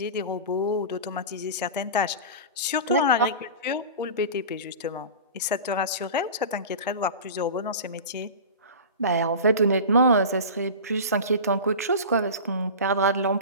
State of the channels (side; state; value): both; inverted; correlation -0.31